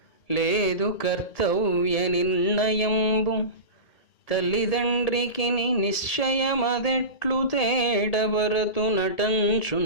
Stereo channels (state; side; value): late; right; 2.1 ms